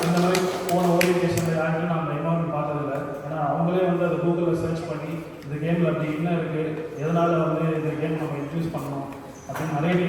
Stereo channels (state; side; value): identical; both; correlation 1.00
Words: இந்த மாதிரி போன ஓரியன்டேஷனில் யாருமே நான் இன்வால்மெண்ட் பார்த்ததில்லை. ஏன்னா அவங்களே வந்து அதை கூகுளில் சர்ச் பண்ணி இந்த கேமில் அப்படி என்ன இருக்குது, எதனால் வந்து இந்த கேம் நம்ம இன்ட்ரடியூஸ் பண்ணணும் அப்படின்னு நிறைய